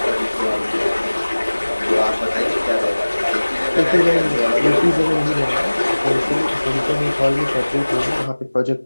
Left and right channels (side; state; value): both; inverted; correlation -1.00